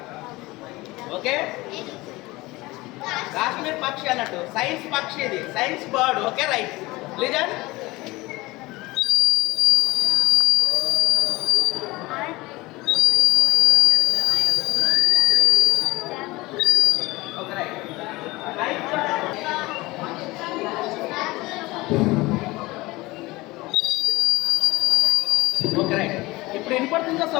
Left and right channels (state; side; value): quieter; right; 21.0 dB